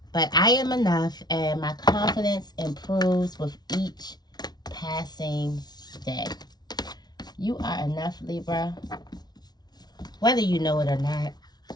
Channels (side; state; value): right; late; 0.19 ms